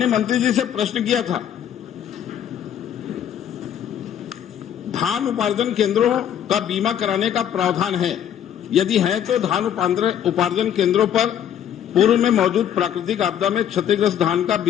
मंत्री जी से प्रश्न किया था, धान उपार्जन केंद्रों का बीमा कराने का प्रावधान है, यदि है तो धान उपार्जन केंद्रों पर पूर्व में मौजूद प्राकृतिक आपदा में क्षतिग्रस्त धान का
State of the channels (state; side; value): quieter; right; 9.8 dB